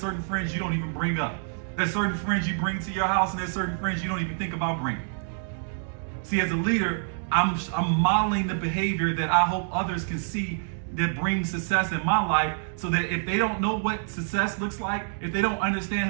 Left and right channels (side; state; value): left; silent; digital silence